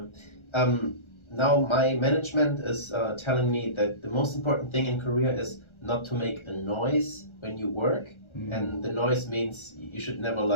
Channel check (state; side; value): late; right; 1.3 ms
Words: Now my management is telling me that the most important thing in Korea is not to make a noise when you work, and the noise means you should never